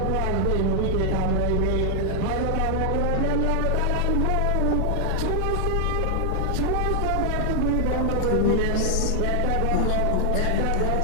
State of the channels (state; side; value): different; both; correlation 0.00